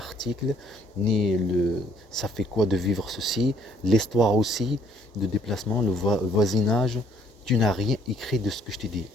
ni le ça fait quoi de vivre ceci, l'histoire aussi, de déplacement, le voisinage. Tu n'as rien écrit de ce que je t'ai dit.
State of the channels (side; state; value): both; normal; correlation 0.65